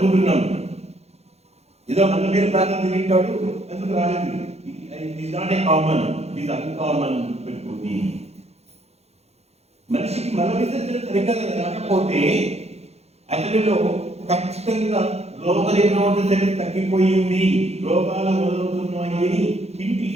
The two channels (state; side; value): late; left; 0.31 ms